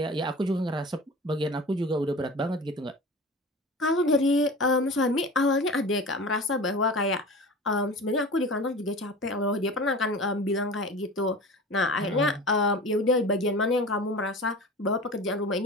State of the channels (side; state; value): both; normal; correlation 0.35